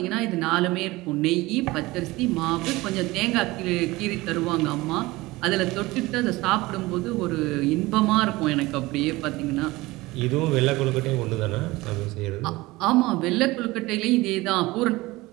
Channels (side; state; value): left; quieter; 20.4 dB